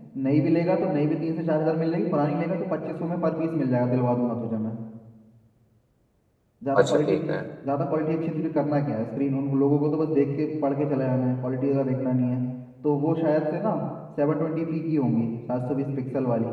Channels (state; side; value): identical; both; correlation 1.00